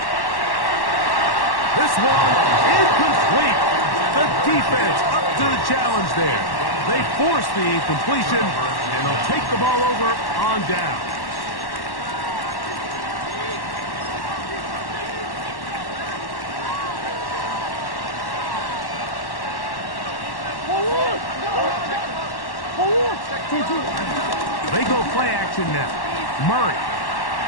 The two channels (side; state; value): right; late; 1.1 ms